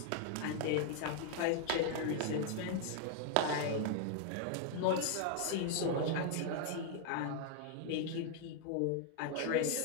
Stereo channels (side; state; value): both; different; correlation 0.00